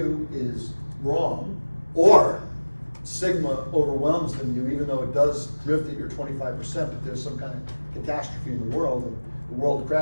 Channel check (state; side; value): inverted; both; correlation -1.00